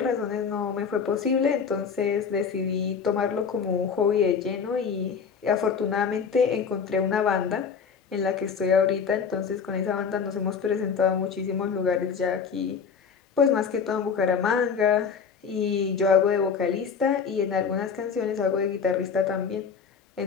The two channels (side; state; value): right; quieter; 6.2 dB